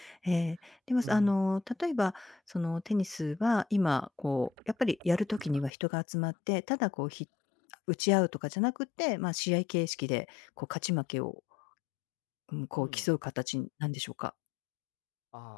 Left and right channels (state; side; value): drops out; right; at 5.7 s